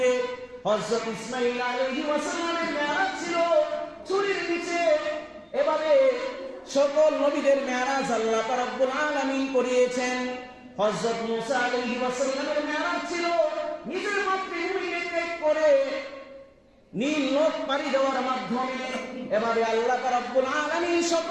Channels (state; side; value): identical; both; correlation 1.00